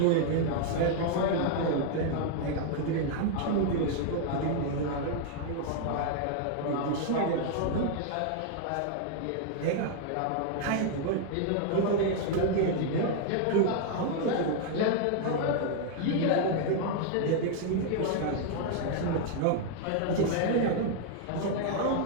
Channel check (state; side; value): different; both; correlation 0.00